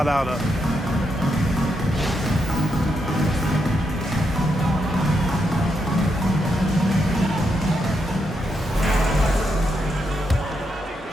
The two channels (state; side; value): normal; both; correlation 0.82